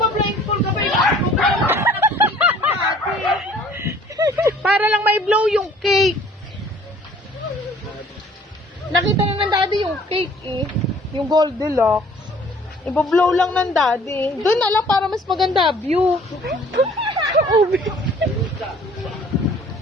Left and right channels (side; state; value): both; normal; correlation 0.54